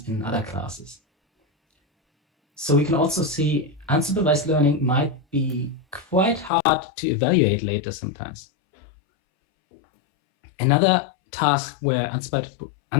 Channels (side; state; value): right; drops out; at 6.5 s